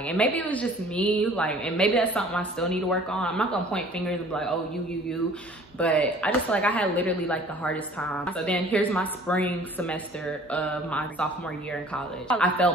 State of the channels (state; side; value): normal; both; correlation 0.51